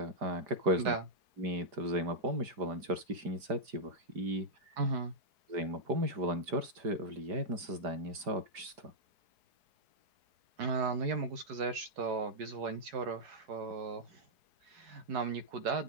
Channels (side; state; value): left; late; 5.0 ms